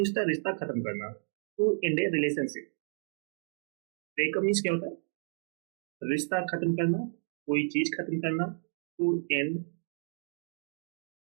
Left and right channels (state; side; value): silent; left; digital silence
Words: the रिश्ता खत्म करना, to end a relationship. Breakup means क्या होता है? रिश्ता खत्म करना, कोई चीज खत्म करना, टू एंड